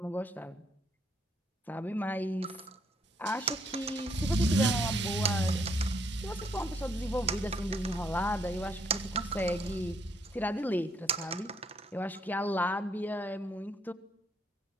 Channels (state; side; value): normal; both; correlation 0.71